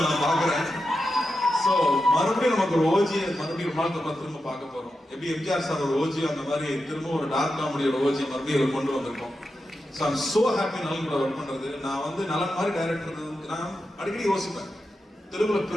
நான் பாக்குறேன். ஸோ மறுபடியும் நமக்கு ஒரு ஓஜியை மறுபடியும் வாழ்க்கை திரும்ப பார்க்க போறோம். எப்படி எம்ஜிஆர் சார் ஒரு ஓஜி அந்த மாதிரி திரும்ப ஒரு டார்க் காமெடியோட ஓஜி மறுபடியும் கொண்டு வந்திருக்கோம். ஸோ ஐம் சோ ஹாப்பி நலன் கூட ஒர்க் பண்றது. நான் வந்து நலன் மாதிரி டைரக்டர் நான் அடிக்கடி யோசிப்பேன், தெலுங்குல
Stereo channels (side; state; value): both; normal; correlation 0.89